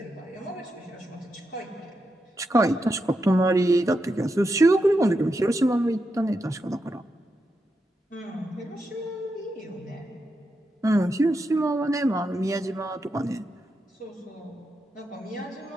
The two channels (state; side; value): normal; both; correlation 0.86